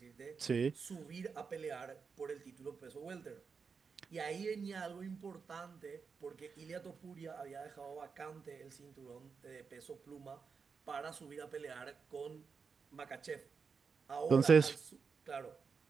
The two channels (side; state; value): left; quieter; 5.5 dB